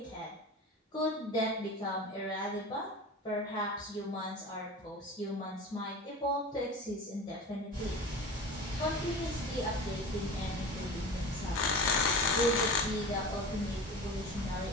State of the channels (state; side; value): normal; both; correlation 0.33